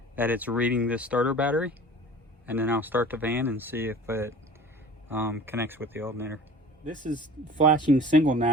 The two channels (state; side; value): normal; both; correlation 0.43